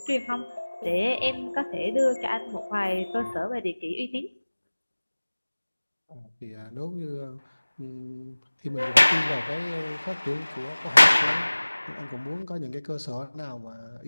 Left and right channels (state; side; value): inverted; both; correlation -1.00